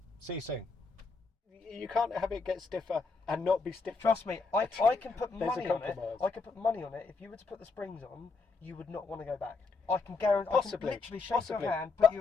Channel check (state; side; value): quieter; right; 4.2 dB